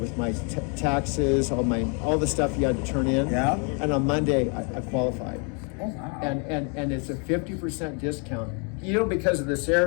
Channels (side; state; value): right; quieter; 37.3 dB